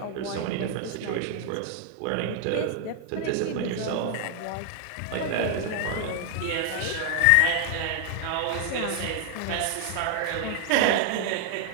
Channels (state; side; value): different; both; correlation 0.00